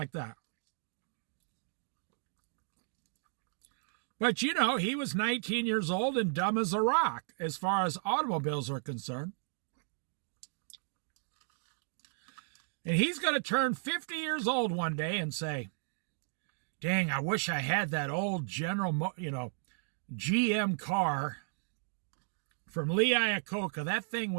that. But, he was 19 years old and dumb as a rock as far as automobiles are concerned. And he's going to turn 50 years old one day and say, dang, I wish I had that old GM car from Lee Iacocca. That thing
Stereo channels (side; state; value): left; silent; digital silence